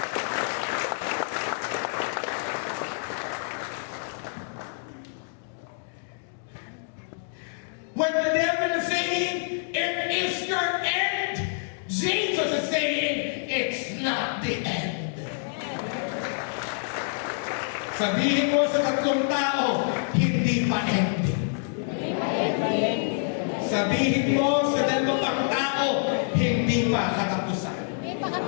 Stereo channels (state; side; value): silent; right; digital silence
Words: When the devil is saying, it is your end, Jesus is saying, it's not the end. Sabihin mo sa tatlong tao, hindi pa ending. Sabihin mo sa dalawang pang tao, hindi pa katapusan. Hindi pa